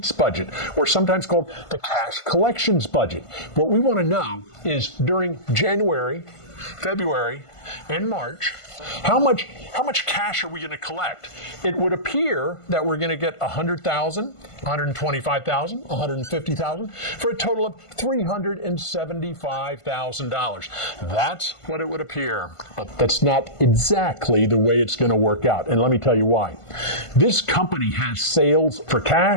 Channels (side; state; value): right; late; 1.5 ms